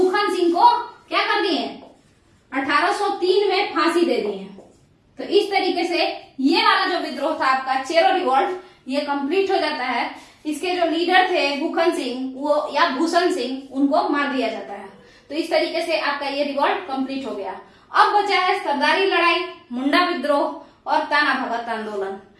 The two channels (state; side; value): identical; both; correlation 1.00